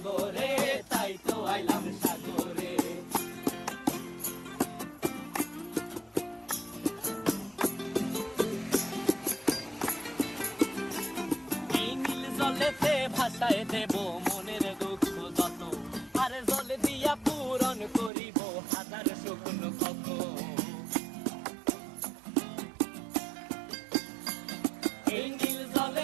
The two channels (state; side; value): drops out; left; at 18.1 s